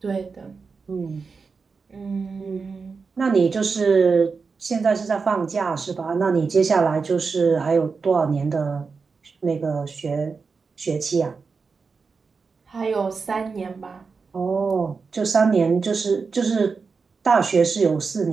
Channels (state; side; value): quieter; left; 4.9 dB